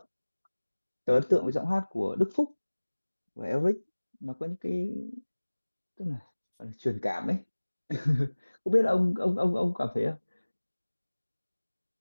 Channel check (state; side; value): inverted; both; correlation -1.00